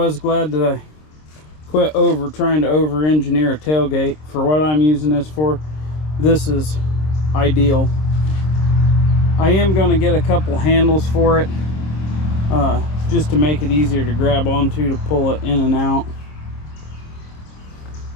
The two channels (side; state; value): right; late; 26 ms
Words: glad that I quit trying to over-engineer a tailgate. For what I'm using this for, this is ideal. I am going to get a couple handles for it, just to make it easier to grab onto to pull it in and out.